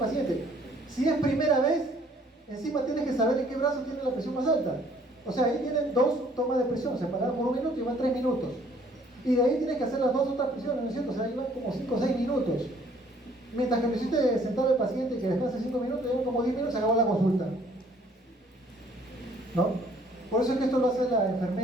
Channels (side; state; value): both; normal; correlation 0.60